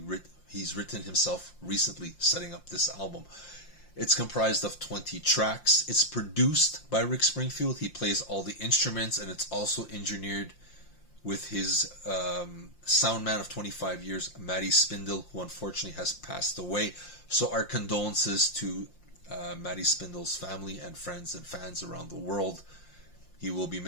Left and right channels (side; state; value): right; late; 5.7 ms